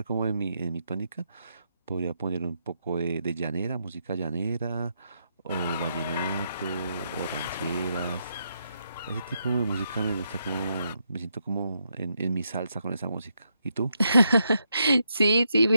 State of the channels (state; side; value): inverted; both; correlation -0.80